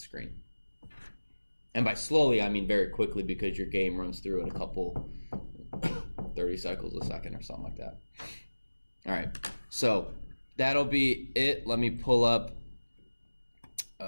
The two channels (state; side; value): inverted; both; correlation -1.00